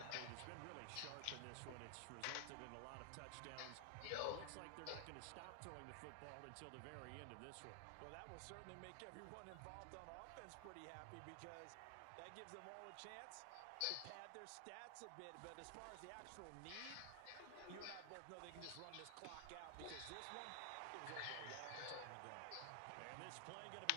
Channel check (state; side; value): different; both; correlation 0.00